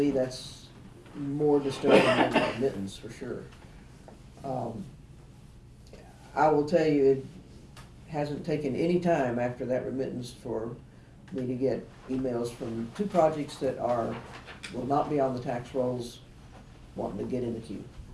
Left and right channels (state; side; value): identical; both; correlation 1.00